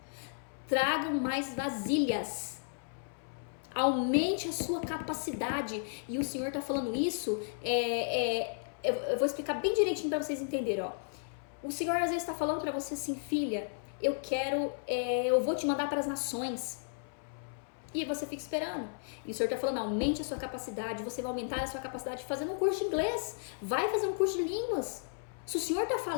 Tragam mais vasilhas. Aumente a sua capacidade. E o Senhor tá falando isso, eu vou explicar bem direitinho para vocês entenderem, ó. O Senhor às vezes tá falando para você assim, filha, eu vou te mandar para as nações. E você fica esperando. E o Senhor tá falando, aumente a sua capacidade, você vai aumentar a sua capacidade fazendo um curso de inglês. Vai fazer um curso de línguas. Se o Senhor tá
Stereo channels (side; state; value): right; silent; 55 dB below the other